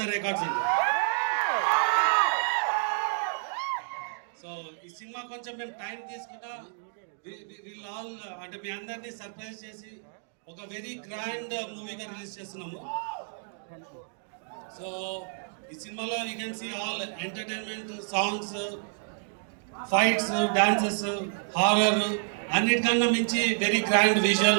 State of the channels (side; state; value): left; silent; digital silence